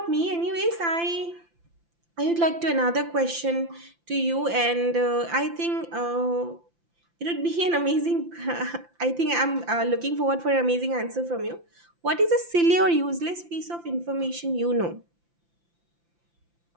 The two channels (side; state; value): left; late; 5.8 ms